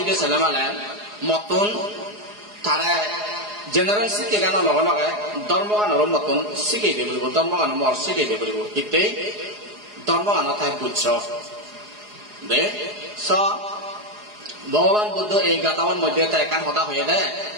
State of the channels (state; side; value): late; left; 4.8 ms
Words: ছেলে মালেন মতন তারা জেনারেল শিখে গান লগে লগে ধর্মগানৰ মতন শিখাই দিয়ে বলিব ধর্মগান মর শিখাই দিয়ে বলিব ইতেই ধর্মগান তাই বুঝছ দে স ভগবান বুদ্ধ এই গাতাওয়ার মধ্যে তাই একান হতা হয়ে দেয়